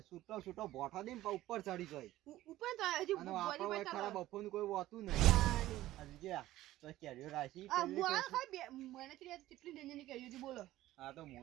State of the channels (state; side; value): quieter; left; 15.4 dB